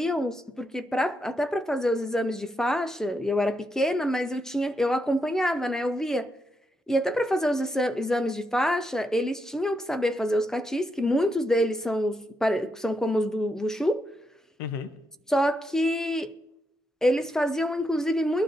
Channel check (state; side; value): normal; both; correlation 0.82